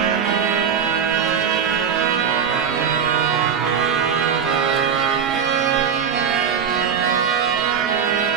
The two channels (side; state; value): left; quieter; 7.4 dB